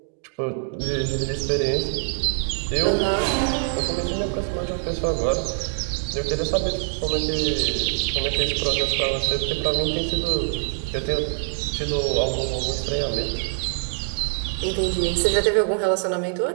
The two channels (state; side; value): silent; left; digital silence